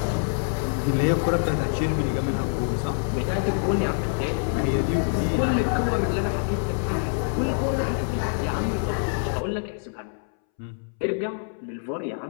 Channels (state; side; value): silent; right; 61 dB below the other